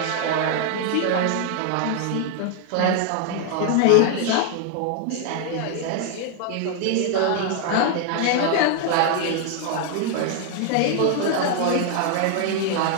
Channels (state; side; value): different; both; correlation 0.00